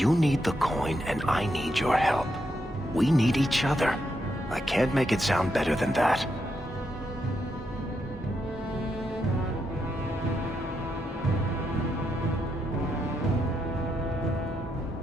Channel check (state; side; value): normal; both; correlation 0.81